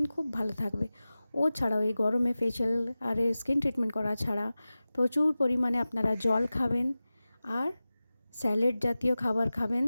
খুব ভালো থাকবে। ও ছাড়াও এই গরমে ফেশিয়াল আর স্কিন ট্রিটমেন্ট করা ছাড়া প্রচুর পরিমাণে আপনারা জল খাবেন আর স্যালাড জাতীয় খাবার খাবেন,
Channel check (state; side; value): inverted; both; correlation -0.96